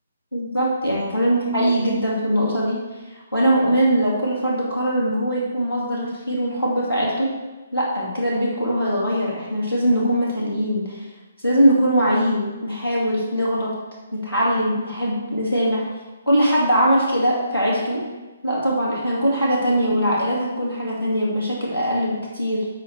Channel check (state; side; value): inverted; both; correlation -0.77